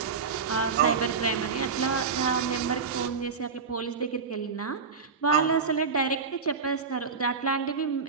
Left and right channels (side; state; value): left; quieter; 5.3 dB